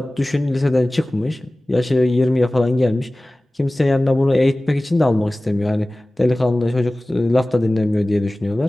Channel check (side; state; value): both; normal; correlation 0.98